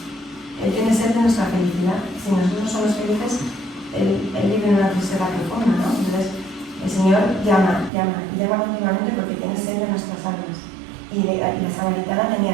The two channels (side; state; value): left; drops out; at 7.9 s